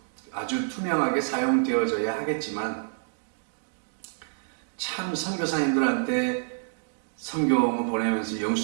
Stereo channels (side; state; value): left; silent; digital silence